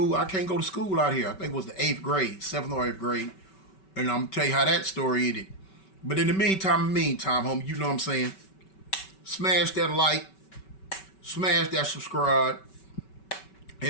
I can't go to school out here." I think it was the 7th or 8th grade, and I'm gonna tell you how that story ended. But in the meantime, homie, you know what I'm saying? Smash that like, smash that subscribe,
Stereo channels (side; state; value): right; late; 5.2 ms